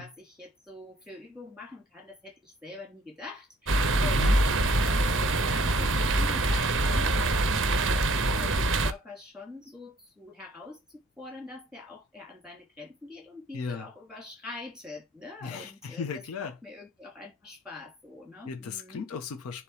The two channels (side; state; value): both; normal; correlation 0.61